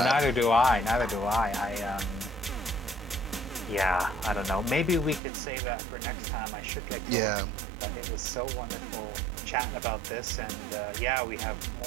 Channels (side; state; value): left; drops out; at 5.2 s